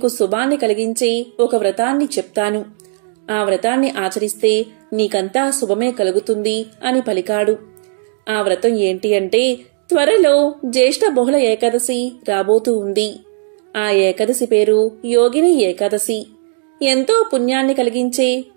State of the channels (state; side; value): silent; left; digital silence